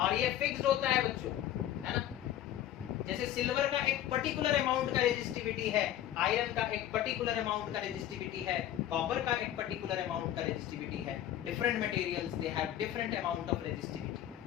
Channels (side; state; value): right; quieter; 12.0 dB